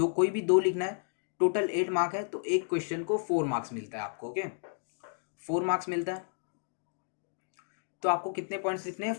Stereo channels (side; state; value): right; silent; digital silence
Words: कोई भी 2 लिखना है, टोटल 8 मार्क है, तो एक क्वेश्चन को 4 मार्क्स मिलता है आपको। ओके, 4 मार्क्स मिलता है। तो आपको कितने पॉइंट्स लिखने हैं,